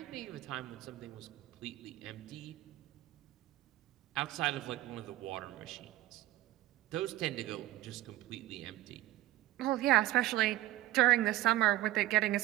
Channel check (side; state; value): left; quieter; 15.8 dB